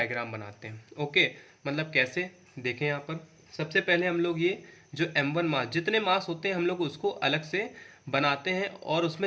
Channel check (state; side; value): identical; both; correlation 1.00